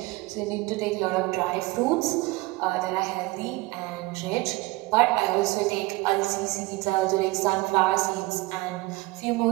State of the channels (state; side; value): quieter; left; 21.6 dB